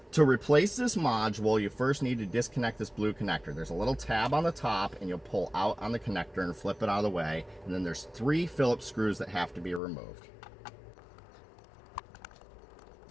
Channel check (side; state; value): right; drops out; at 9.8 s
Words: To replace this module, you first need to disconnect this blue connector. There's a little tab on the top, and you'll pull out on the connector and flip it out of the way, and then there's 3 Phillips screws that have to be removed.